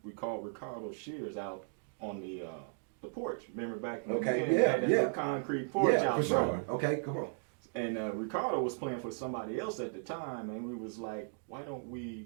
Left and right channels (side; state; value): left; silent; 54 dB below the other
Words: we called Ricardo Shears out on the porch. Remember back in the day, that concrete porch out for sure. Okay, come on. And Ricardo was playing for somebody else at the time, and we was like, why don't